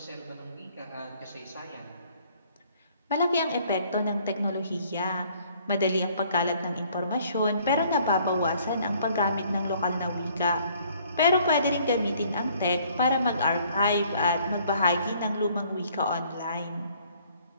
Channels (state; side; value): inverted; both; correlation -0.61